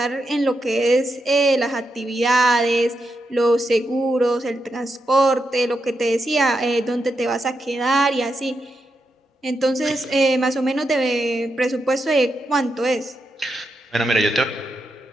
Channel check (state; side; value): normal; both; correlation 0.85